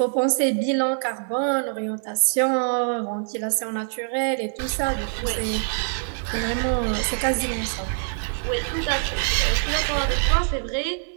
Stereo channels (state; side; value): silent; left; digital silence